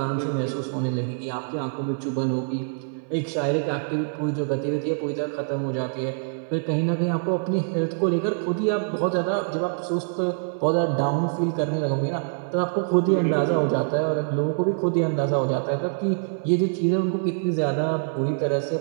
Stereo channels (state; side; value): silent; left; 62 dB below the other